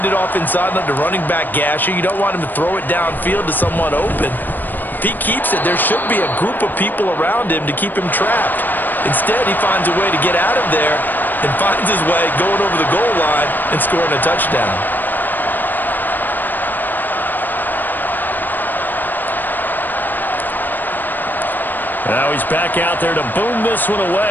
it off inside on the running back gasher. You don't want him to throw it downfield to someone open. If he keeps it, there should be a group of people around him to keep him trapped. Instead, he finds a way to get out of there and finds his way going over the goal line and scoring a touchdown. Now he's back out there to boom this one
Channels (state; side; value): late; right; 0.090 ms